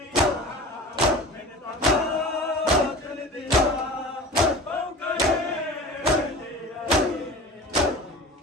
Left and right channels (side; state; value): both; normal; correlation 0.36